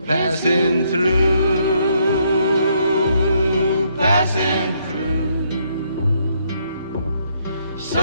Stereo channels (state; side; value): inverted; both; correlation -0.72